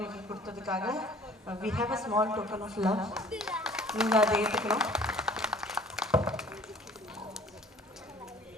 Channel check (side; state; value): both; normal; correlation 0.51